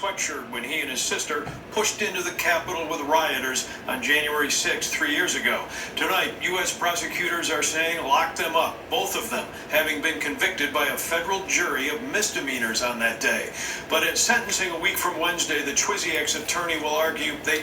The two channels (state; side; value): identical; both; correlation 1.00